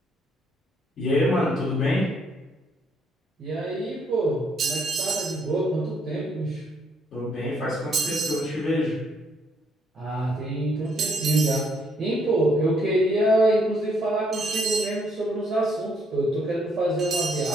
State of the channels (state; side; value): normal; both; correlation 0.70